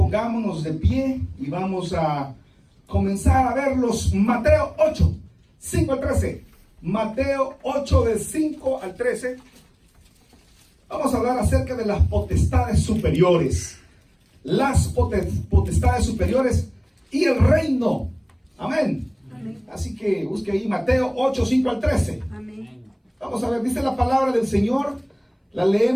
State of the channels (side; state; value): both; identical; correlation 1.00